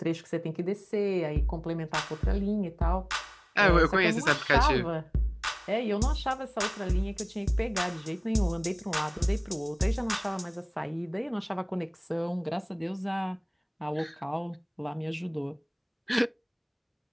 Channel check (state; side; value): identical; both; correlation 1.00